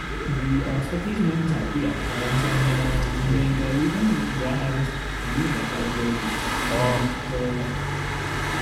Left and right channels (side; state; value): both; identical; correlation 1.00